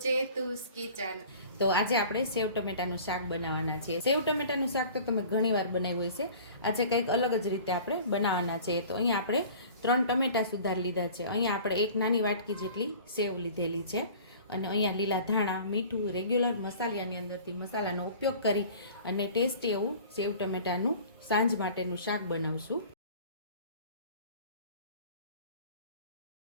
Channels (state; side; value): inverted; both; correlation -0.44